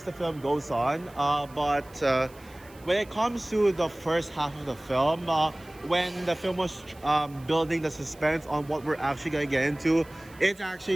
the film goes on. But when it comes to the first half of the film, when the film was building the suspense on what we're actually gonna get into, it's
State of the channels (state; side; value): noise; right; hiss, 26 dB below the sound